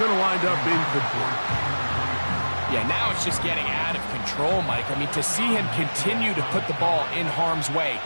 to wind up incomplete. Yeah, now it's just getting out of control, Mike. I mean, to see him continue to put the ball in harm's way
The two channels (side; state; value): both; inverted; correlation -1.00